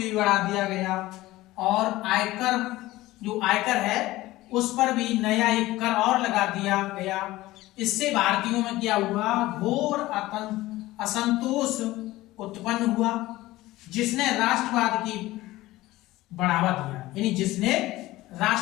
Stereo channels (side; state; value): right; quieter; 17.6 dB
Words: बढ़ा दिया गया, और आयकर जो आयकर है उस पर भी नया एक कर और लगा दिया गया। इससे भारतीयों में क्या हुआ? घोर असंतोष उत्पन्न हुआ, जिसने राष्ट्रवाद की बढ़ावा दिया, यानी जिसने